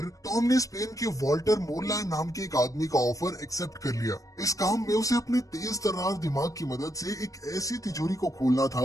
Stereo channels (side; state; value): right; late; 0.16 ms